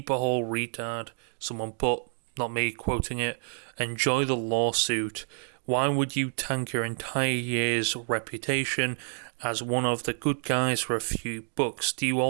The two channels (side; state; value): left; silent; digital silence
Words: hole, retard. Someone put, not me quoting it, "Enjoy the lawsuit. Why would you tank your entire year's reputation as one of the good guys for a few bucks? Do you